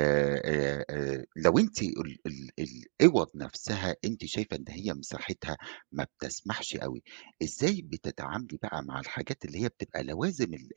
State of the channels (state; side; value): silent; left; digital silence